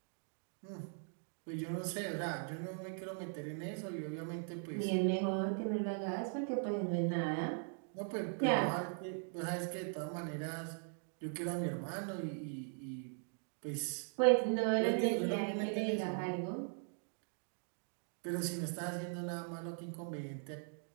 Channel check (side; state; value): left; silent; 51 dB below the other